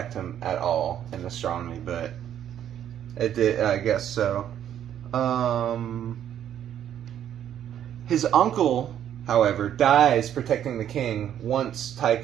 him at all in astronomy, but it did, I guess so. His uncle, however, dies protecting the king once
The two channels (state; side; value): quieter; left; 10.2 dB